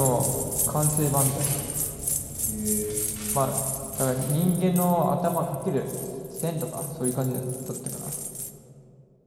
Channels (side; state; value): both; identical; correlation 1.00